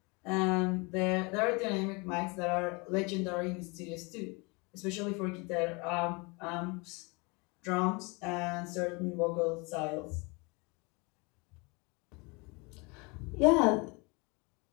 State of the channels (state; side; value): quieter; right; 28.7 dB